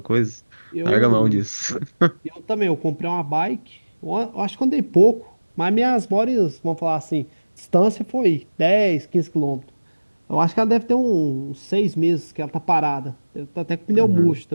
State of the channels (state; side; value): inverted; both; correlation -1.00